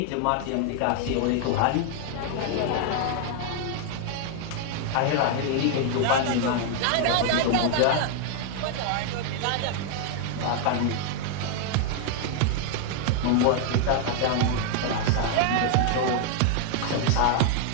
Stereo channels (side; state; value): both; different; correlation 0.00